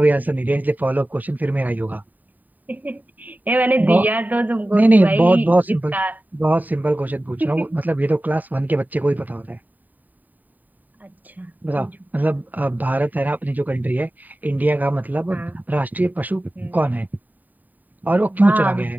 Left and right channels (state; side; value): late; left; 0.085 ms